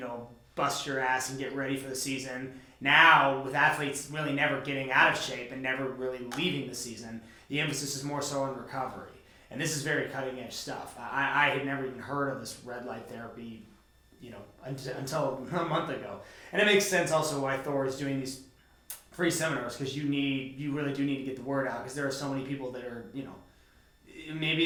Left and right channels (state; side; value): identical; both; correlation 1.00